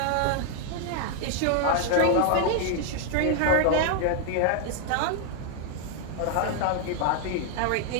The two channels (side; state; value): both; different; correlation 0.00